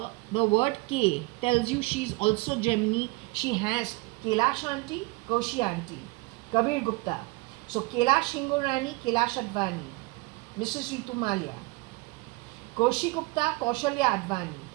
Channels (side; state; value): left; quieter; 24.4 dB